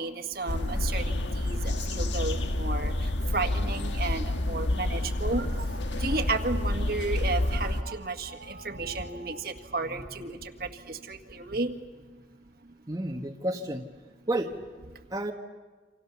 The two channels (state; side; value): normal; both; correlation 0.58